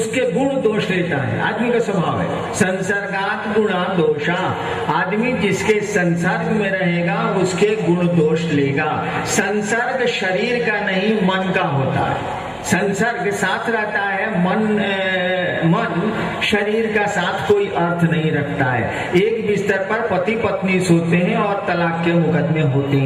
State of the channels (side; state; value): both; identical; correlation 1.00